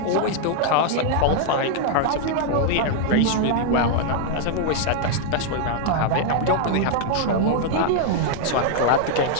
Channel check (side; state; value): both; different; correlation 0.00